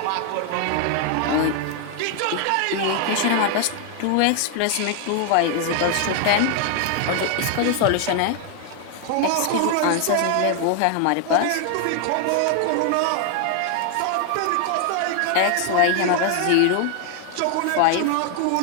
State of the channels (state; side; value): different; both; correlation 0.00